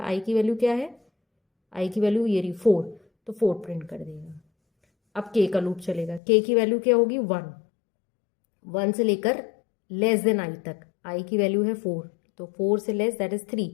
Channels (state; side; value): drops out; right; at 6.2 s